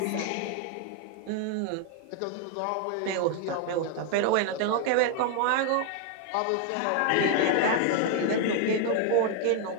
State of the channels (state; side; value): different; both; correlation 0.00